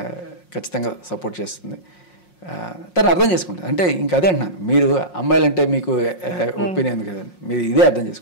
ఖచ్చితంగా సపోర్ట్ చేస్తుంది. తను అర్థం చేసుకుంటుంది. అంటే ఇంకా అదే అంటున్నాను, మీరు అమ్మాయిలంటే మీకు ఒపీనియన్ ఉంది కదండి, మీరు ఇదే అర్థం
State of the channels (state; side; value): late; right; 5.5 ms